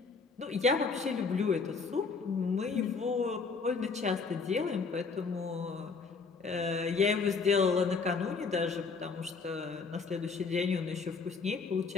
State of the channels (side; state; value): right; quieter; 4.8 dB